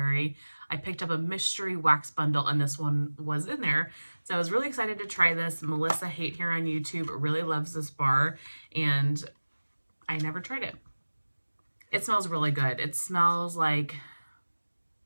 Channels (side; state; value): both; inverted; correlation -1.00